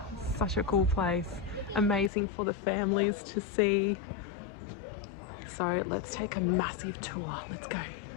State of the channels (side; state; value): right; drops out; at 2.1 s